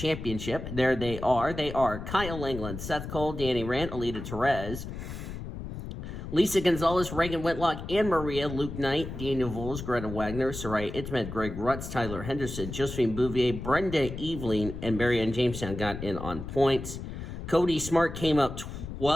There they are. They are Kyle England, Seth Cole, Danny Rand, Alita Perez, Lisa Gonzalez, Reagan Whitlock, Anne Maria, Luke Knight, Daniel Voles, Greta Wagner, Soraya Itmed, Greg Rutz, Tyler Henderson, Josephine Bouvier, Brenda Eveling, and Marianne Jamestown got in on points. Cody Smart came up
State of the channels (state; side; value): noise; left; rumble, 8 dB below the sound